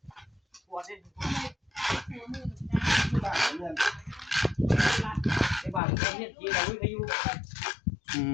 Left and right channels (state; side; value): drops out; right; at 5.8 s